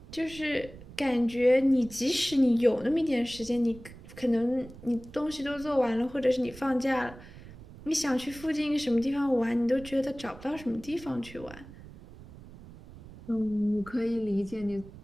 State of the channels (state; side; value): noise; right; rumble, 18 dB below the sound